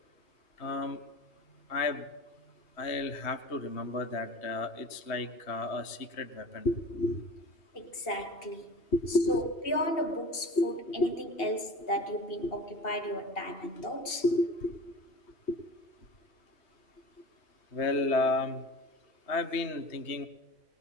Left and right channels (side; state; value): right; late; 2.8 ms